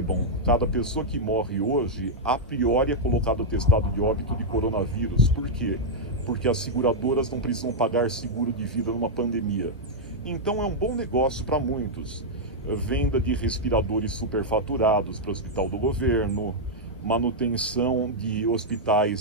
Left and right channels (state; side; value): normal; both; correlation -0.04